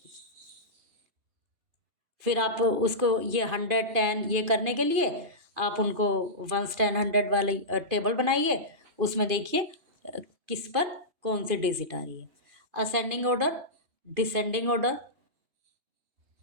फिर आप उसको ये 100 10 ये करने के लिए आप उनको 1 10 100 वाली टेबल बनाइए, उसमें देखिए किस पर कौन सी डिजिट आ रही है। Ascending order, descending order,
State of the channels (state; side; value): late; left; 2.5 ms